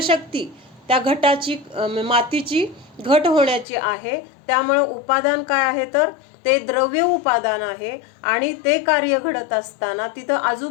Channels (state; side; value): drops out; right; at 3.7 s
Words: शक्ती त्या घटाची, मातीची घट होण्याची आहे. त्यामुळं उपादान काय आहे तर ते द्रव्य उपादान आहे, आणि ते कार्य घडत असताना तिथं